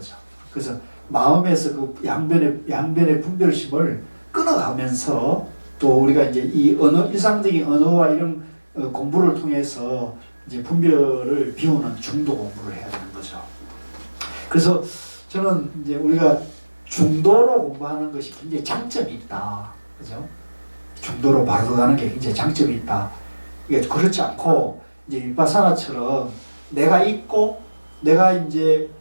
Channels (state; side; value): inverted; both; correlation -1.00